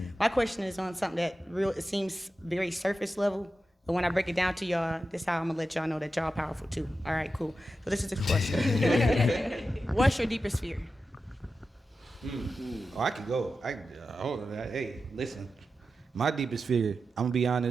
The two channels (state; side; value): normal; both; correlation 0.91